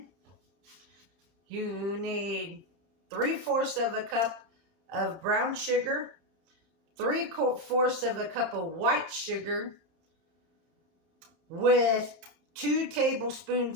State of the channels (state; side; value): late; left; 30 ms